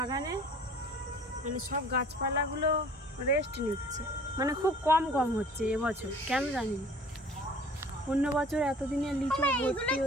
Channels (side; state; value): both; normal; correlation 0.49